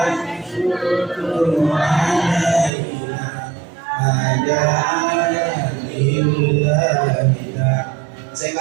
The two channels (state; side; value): drops out; left; at 2.7 s